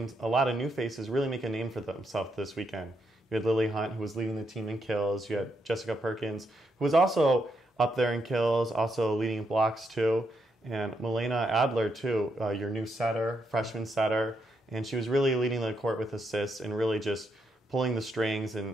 a lot of new faces really make a name for themselves this weekend. You had Lily Hunt, who was leading the team in kills. You had Jessica Perkins, who was also up there in kills, also leading blocks too. And Milena Adler too, your new setter, freshman setter. And she was really leading the court with assists and really just pulling the strings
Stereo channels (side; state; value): both; normal; correlation 0.80